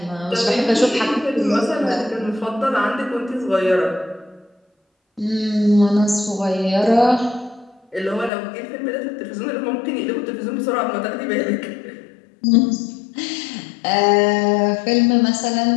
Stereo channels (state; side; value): drops out; right; at 8.3 s